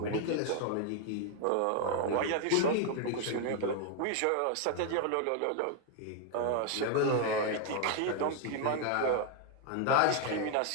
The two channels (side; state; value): both; different; correlation 0.01